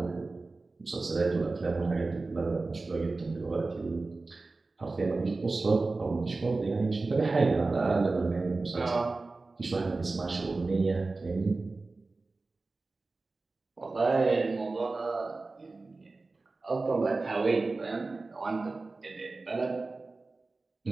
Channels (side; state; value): left; quieter; 3.6 dB